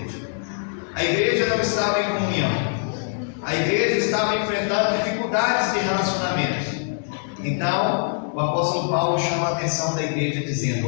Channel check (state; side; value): silent; right; digital silence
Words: A igreja não estava em comunhão. A igreja estava enfrentando dificuldades de relacionamento. Então, o apóstolo Paulo chama a atenção da igreja dizendo: